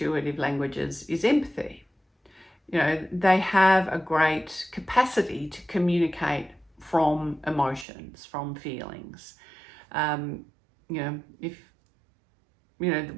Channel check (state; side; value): drops out; left; at 7.9 s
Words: languages is empathy. You know, they have a great capacity to communicate from emotions, from feelings. You know, if, you know,